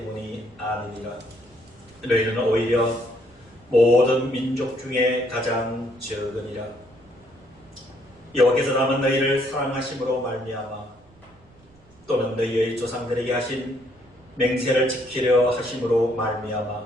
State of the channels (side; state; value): right; noise; rumble, 28 dB below the sound